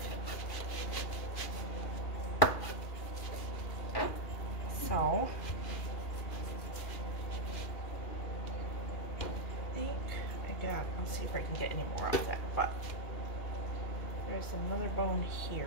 So, I think I got, I'll see if I can get any more out of that, but there's another bone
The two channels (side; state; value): right; late; 2.4 ms